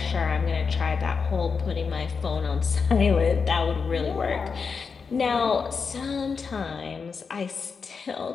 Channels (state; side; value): quieter; right; 5.4 dB